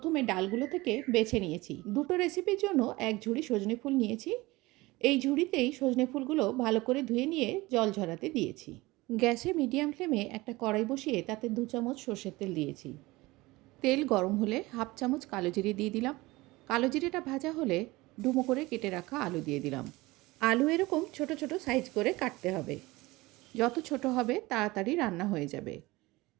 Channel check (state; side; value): quieter; left; 20.9 dB